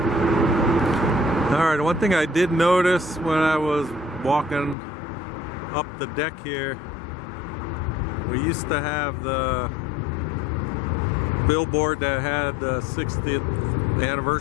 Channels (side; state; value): right; drops out; at 4.8 s